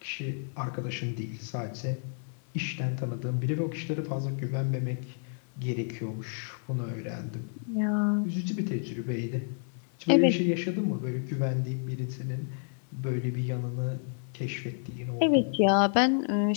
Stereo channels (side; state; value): right; silent; digital silence